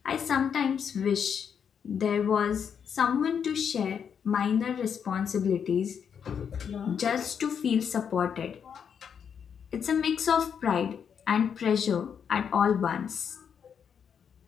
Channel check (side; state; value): right; quieter; 7.4 dB